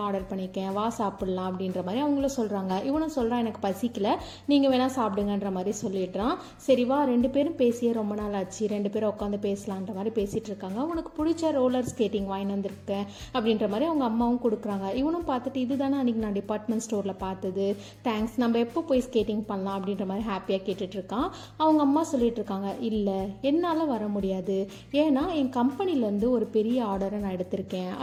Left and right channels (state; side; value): identical; both; correlation 1.00